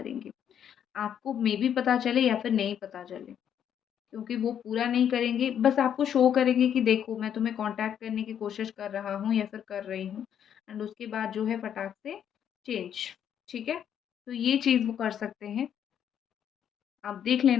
आपको मेबी पता चले या फिर नहीं पता चले। क्योंकि वो पूरा नहीं करेंगे, बस आपको शो करेंगे कि देखो मैं तुम्हें कॉन्टैक्ट करने की कोशिश कर रहा हूँ या फिर कर रही हूँ, एंड उसके बाद जो है फटाक से चेंज, ठीक है? तो ये चीज़ वो कर सकते हैं, आप देख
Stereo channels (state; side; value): quieter; right; 9.2 dB